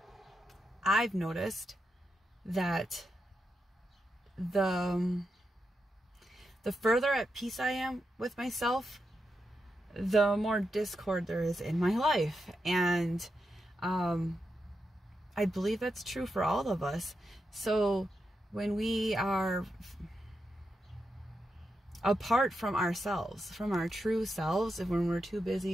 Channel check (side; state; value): both; normal; correlation 0.86